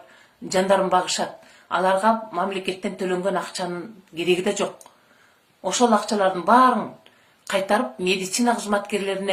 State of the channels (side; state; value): both; identical; correlation 1.00